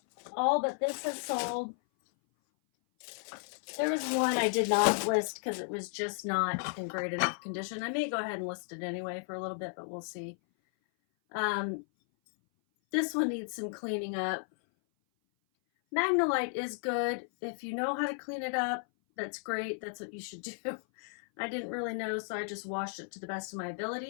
All but this has sold. There was one I did not list because it was just not in great enough condition. I may go ahead and list it anyway for a little bit, but we'll see. This one needs some cleaning up. Magnolite is good. If you know how to clean it up, that's great. That's what you should do. I didn't really know, so I just washed it to the best of my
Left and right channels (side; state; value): right; silent; 55 dB below the other